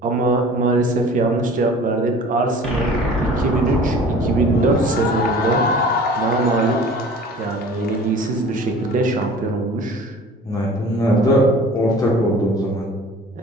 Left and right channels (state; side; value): normal; both; correlation 0.45